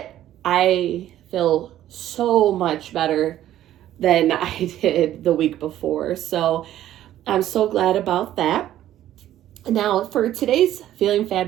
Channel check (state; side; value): quieter; left; 12.7 dB